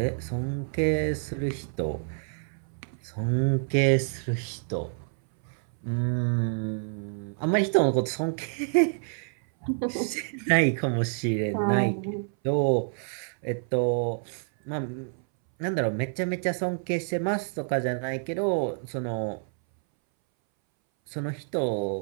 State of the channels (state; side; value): silent; left; 59 dB below the other